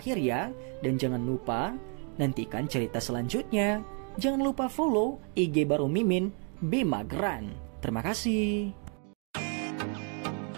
ya. Dan jangan lupa nantikan cerita selanjutnya. Jangan lupa follow IG baru Mimin, Bima Gran. Terima kasih.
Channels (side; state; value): left; quieter; 39.4 dB